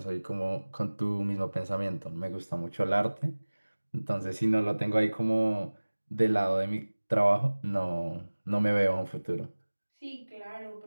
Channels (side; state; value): both; inverted; correlation -1.00